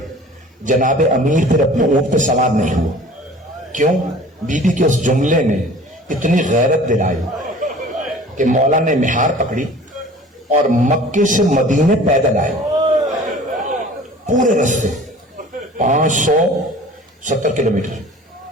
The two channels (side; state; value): both; normal; correlation 0.45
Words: جناب امیر پھر اپنے اونٹ پہ سوار نہیں ہوا۔ کیوں؟ بی بی کے اس جملے نے اتنی غیرت دلائی کہ مولا نے مہار پکڑی اور مکے سے مدینے پیدل آئے، پورے رستے 570 کلومیٹر